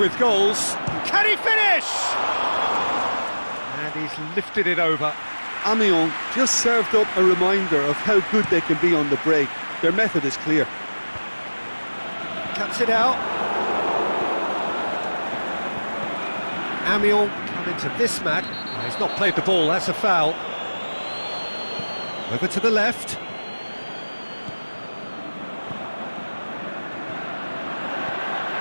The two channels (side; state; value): both; inverted; correlation -1.00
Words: goals. Can he finish? And he's lifted it over. Amiens just served up a reminder of how good they can be on the break. Their method is clear. Cuts it out. Amiens come into this match. Oh, he's not played the ball, that's a foul. Over to the left.